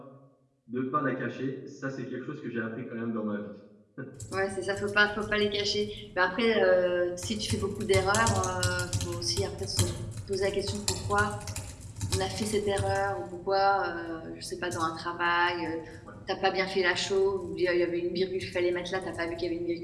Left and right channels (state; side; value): identical; both; correlation 1.00